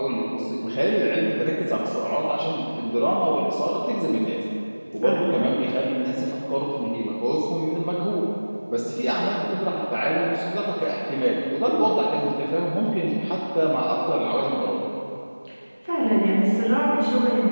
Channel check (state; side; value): inverted; both; correlation -1.00